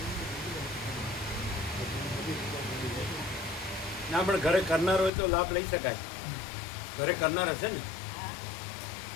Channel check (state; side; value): drops out; right; at 5.1 s